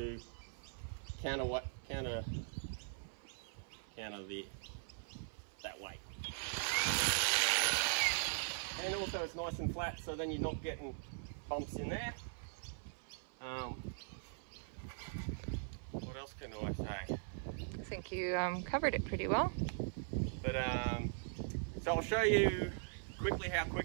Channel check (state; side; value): silent; left; 51 dB below the other